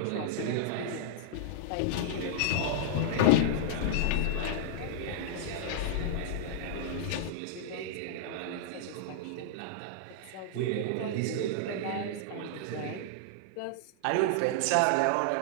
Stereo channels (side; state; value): both; different; correlation -0.01